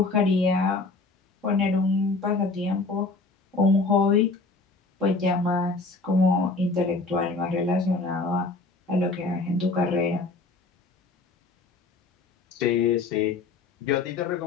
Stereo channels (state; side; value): quieter; right; 3.7 dB